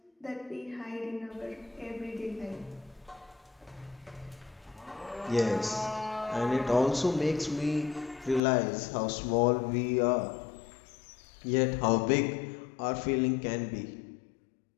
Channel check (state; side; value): drops out; right; at 8.4 s